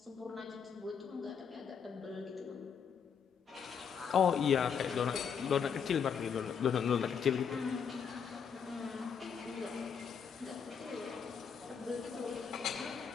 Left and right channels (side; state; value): right; quieter; 6.9 dB